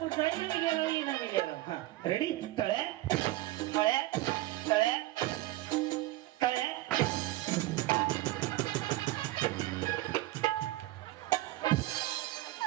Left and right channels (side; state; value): left; quieter; 17.2 dB